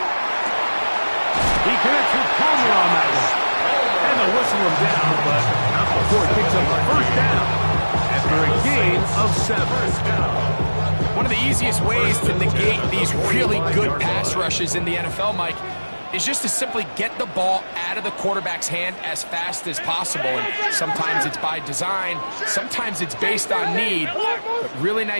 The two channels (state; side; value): inverted; both; correlation -1.00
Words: He connects with Palmer on that one. And they'll whistle him down, but not before he picks up a 1st down after a gain of 7. One of the easiest ways to negate these really good pass rushes in the NFL, Mike, is just to simply get the ball out of the quarterback's hand as fast as possible. And sometimes it's by design, sometimes it's based on need. But really